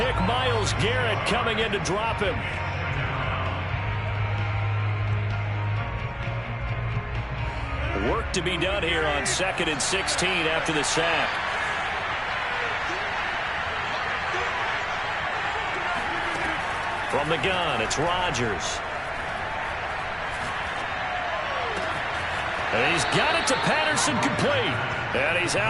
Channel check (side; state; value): both; identical; correlation 1.00